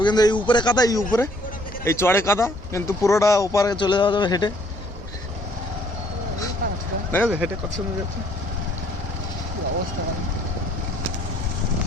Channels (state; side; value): normal; both; correlation 0.62